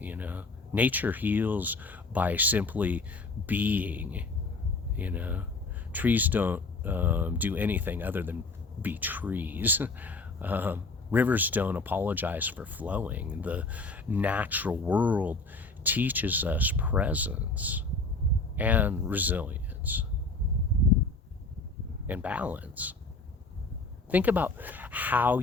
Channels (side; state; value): right; quieter; 3.5 dB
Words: Nature heals by simply being. Trees don't do anything other than be trees. Rivers don't apologize for flowing. The natural world teaches us presence and resilience and balance. Think about how